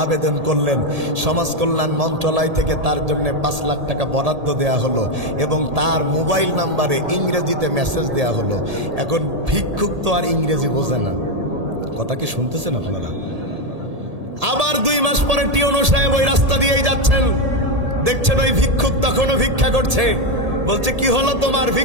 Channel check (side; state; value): left; late; 1.7 ms